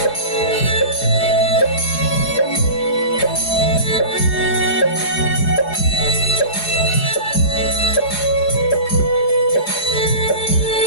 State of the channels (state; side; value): late; right; 4.8 ms